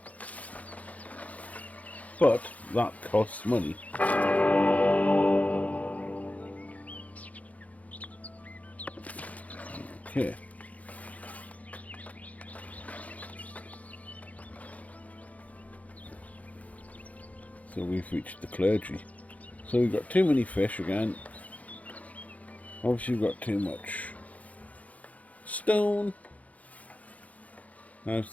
But that costs money. Okay. So we've reached the clergy. So we've got too many fish again. Obviously we've got too much stone. How's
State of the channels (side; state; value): right; late; 0.070 ms